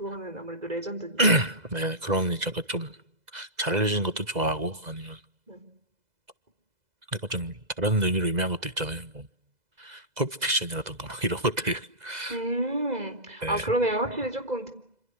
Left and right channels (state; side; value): late; left; 2.0 ms